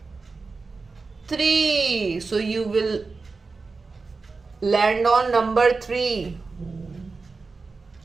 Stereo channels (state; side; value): quieter; left; 4.1 dB